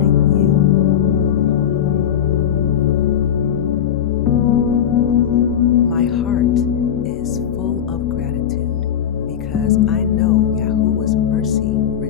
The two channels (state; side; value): quieter; right; 9.4 dB